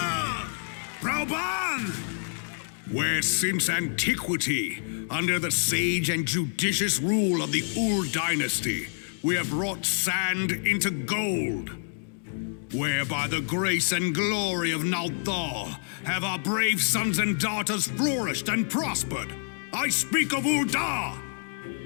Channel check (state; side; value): silent; right; 60 dB below the other